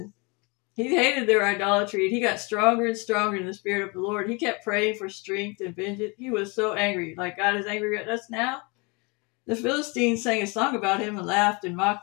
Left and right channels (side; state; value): right; quieter; 29.4 dB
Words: He hated their idolatry, and he got stronger and stronger in the spirit of the Lord. He kept praying for strength and vengeance. He was so angry, like God is angry at us now. The Philistines sang a song about him and laughed and